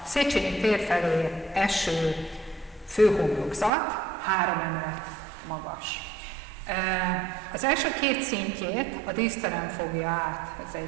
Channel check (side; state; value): left; drops out; at 3.7 s